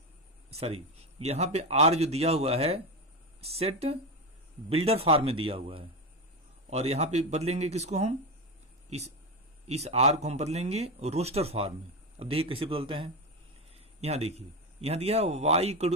सॉरी यहां पे आर जो दिया हुआ है सेट बिल्डर फॉर्म में दिया हुआ है और यहां पे बदलेंगे किसको, हम इस आर को हम बदलेंगे रोस्टर फॉर्म में। अब देखिए कैसे बदलते हैं। यहां देखिए, यहां दिया y equal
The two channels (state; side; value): normal; both; correlation 0.16